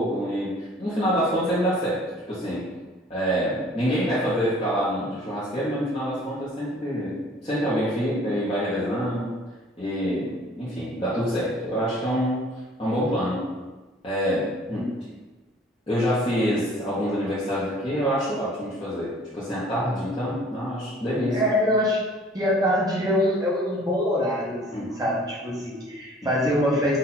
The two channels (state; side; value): normal; both; correlation 0.52